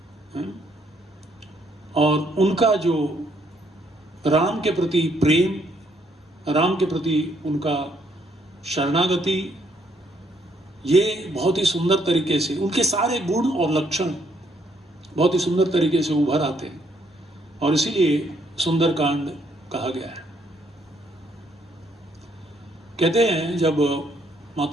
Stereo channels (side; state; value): both; normal; correlation 0.70